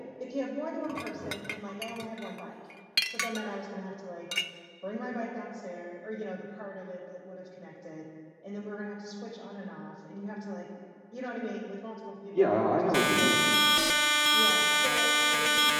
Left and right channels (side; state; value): both; identical; correlation 1.00